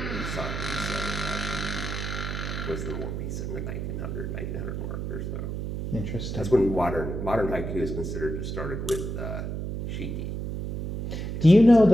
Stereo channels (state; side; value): noise; right; hum, 4 dB below the sound